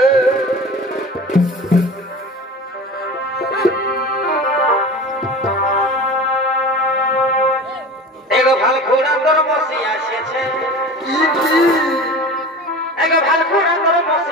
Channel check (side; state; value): both; normal; correlation 0.35